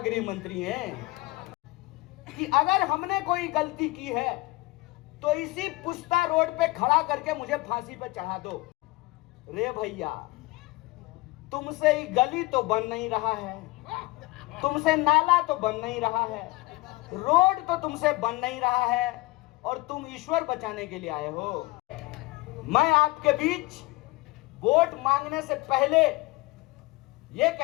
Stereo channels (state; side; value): quieter; right; 22.2 dB